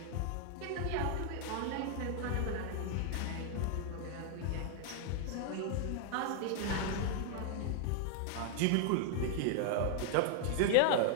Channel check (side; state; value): both; different; correlation 0.00